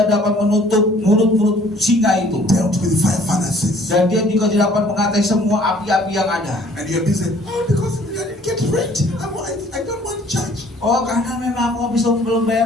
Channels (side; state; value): both; normal; correlation 0.56